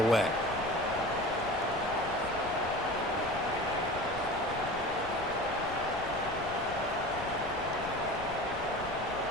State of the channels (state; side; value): noise; left; rumble, 13 dB below the sound